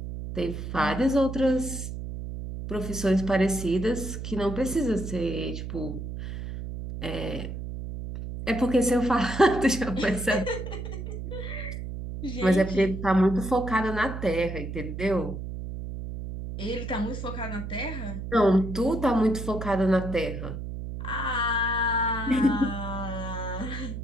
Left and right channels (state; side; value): noise; right; hum, 7 dB below the sound